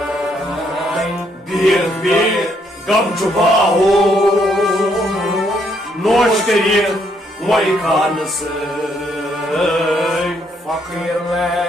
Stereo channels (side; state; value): both; normal; correlation 0.72